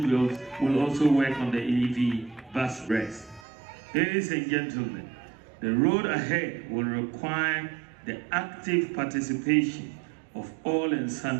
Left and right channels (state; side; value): drops out; left; at 3.5 s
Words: will also work on the EV bus rest. Ladies and gentlemen, the road ahead will require the active participation of all and